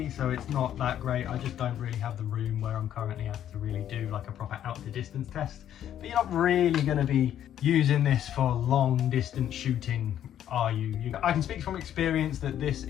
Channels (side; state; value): right; quieter; 10.7 dB